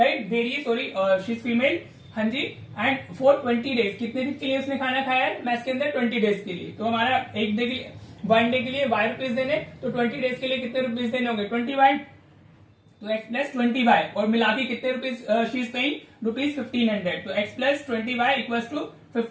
दे रही है, सॉरी शी इज फीमेल। हाँ जी। एंड फॉर 20 डेज, कितने दिन के लिए उसने खाना खाया है मैस के अंदर? 20 डेज के लिए। तो हमारा एक डे के लिए, 1 डे के लिए वाई रुपीज देने, तो 20 डेज के लिए कितने रुपीज देने होंगे? 20 वाई, तो x प्लस 20 वाई, और मिला के कितने रुपीज शी इज पेइंग? ₹1500। तो x plus 20 Y equal to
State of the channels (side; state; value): both; identical; correlation 1.00